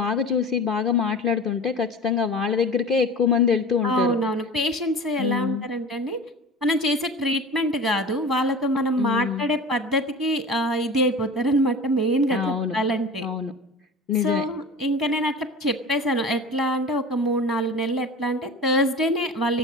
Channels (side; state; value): both; normal; correlation 0.35